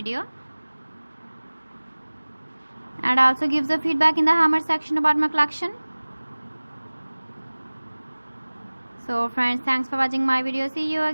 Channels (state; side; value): inverted; both; correlation -1.00